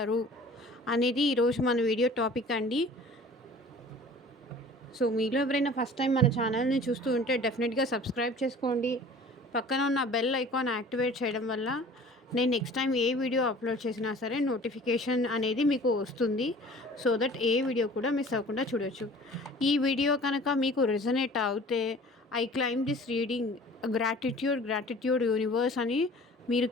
అనేది ఈరోజు మన వీడియో టాపిక్ అండి. సో మీలో ఎవరైనా ఫస్ట్ టైం మన ఛానల్ని చూస్తూ ఉంటే డెఫినెట్గా సబ్స్క్రైబ్ చేసుకోండి. పక్కన ఉన్న బెల్ ఐకాన్ యాక్టివేట్ చేయడం వల్ల నేను నెక్స్ట్ టైం ఏ వీడియో అప్లోడ్ చేసినా సరే నోటిఫికేషన్ అనేది మీకు వస్తుంది. సో దట్ ఏ వీడియో కూడా మిస్ అవ్వకుండా చూడొచ్చు. ఈ వీడియో కనుక మీకు రెజనేట్ అవుతే I claim this reading gratitude universe అని మీరు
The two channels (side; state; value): both; normal; correlation 0.46